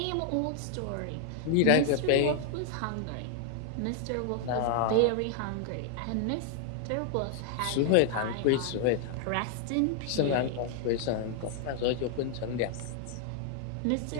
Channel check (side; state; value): both; different; correlation 0.00